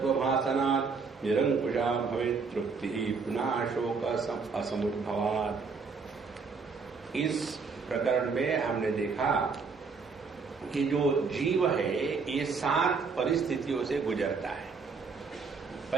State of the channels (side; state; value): left; quieter; 4.9 dB